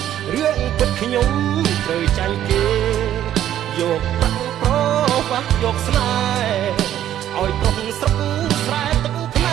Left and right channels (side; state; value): left; quieter; 11.6 dB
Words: រឿងពិតខ្ញុំត្រូវចាញ់គេយកប្រាំងប្រវាស់យកស្នេហ៍ឲ្យប្រុសស្រុកស្រែទឹកភ្ន